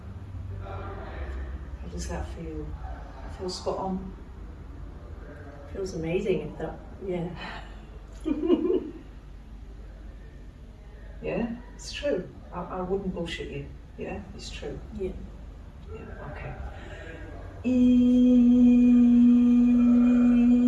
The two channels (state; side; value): identical; both; correlation 1.00